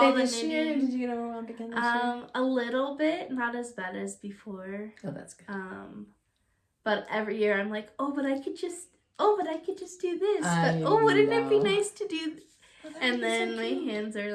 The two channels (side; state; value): both; identical; correlation 1.00